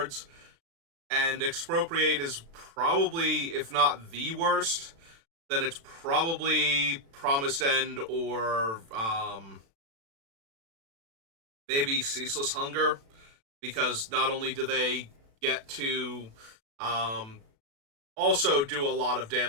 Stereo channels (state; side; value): late; left; 36 ms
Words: And Expropriate is probably, if not the worst, then it's probably Promised End, or maybe Ceaseless Hunger, because not only do they get to also do a lot of